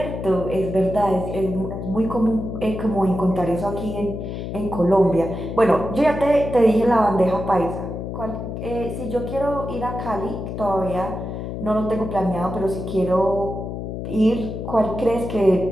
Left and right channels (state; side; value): noise; left; hum, 6 dB below the sound